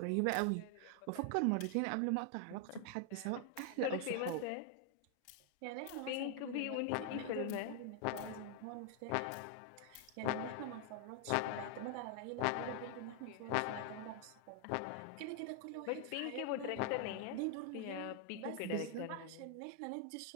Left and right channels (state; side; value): different; both; correlation 0.00